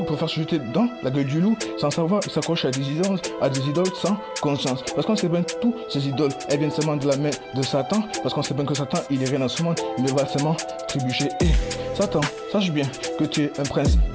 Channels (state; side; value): identical; both; correlation 1.00